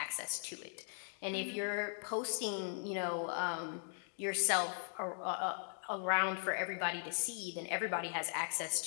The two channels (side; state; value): right; silent; digital silence